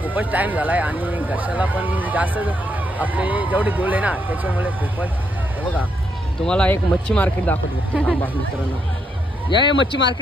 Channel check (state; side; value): normal; both; correlation 0.77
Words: खूपच टाइम झालाय आणि घशाला पण जास्त आपले जेवढे गोल आहे ना त्याच्यामुळे खूपच. हे बघा तुम्हाला एक मच्छी मार्केट दाखवतो मित्रांनो. या मच्छी